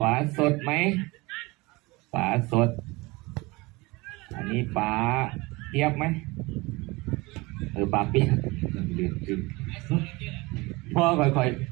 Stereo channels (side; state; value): left; quieter; 23.5 dB